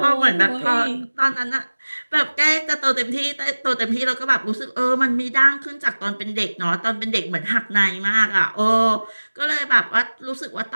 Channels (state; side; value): inverted; both; correlation -1.00